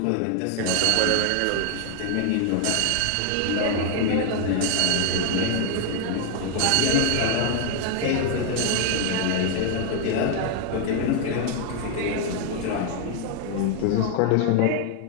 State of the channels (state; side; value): different; both; correlation 0.00